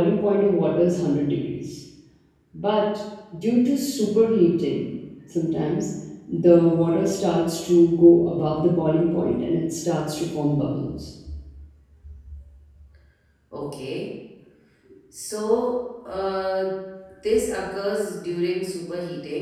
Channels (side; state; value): both; identical; correlation 1.00